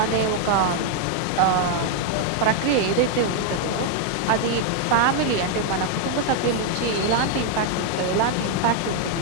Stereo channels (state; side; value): different; both; correlation 0.00